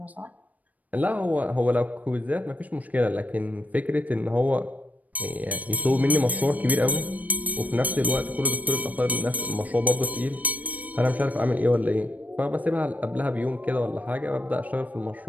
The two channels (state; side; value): late; left; 0.073 ms